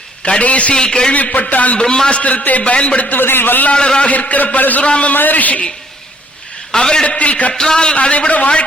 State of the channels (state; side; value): normal; both; correlation 0.63